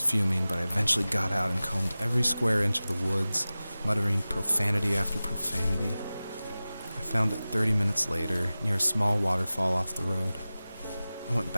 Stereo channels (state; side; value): inverted; both; correlation -0.96